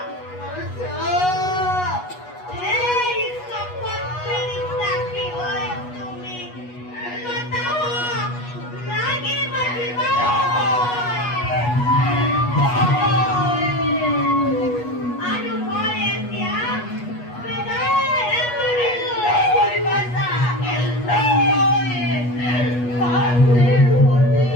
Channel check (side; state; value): right; late; 8.3 ms